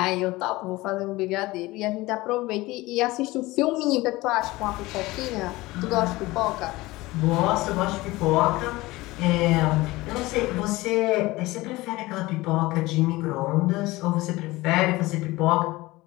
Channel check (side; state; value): right; quieter; 20.0 dB